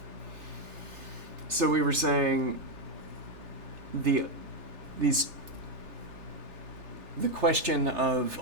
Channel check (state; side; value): late; left; 3.3 ms